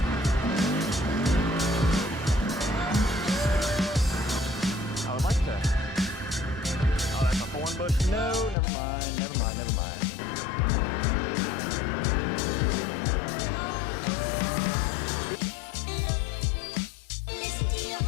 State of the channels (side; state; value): right; drops out; at 8.6 s